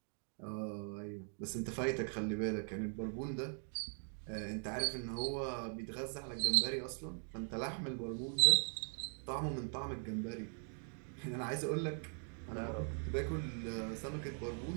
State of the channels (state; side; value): silent; left; 51 dB below the other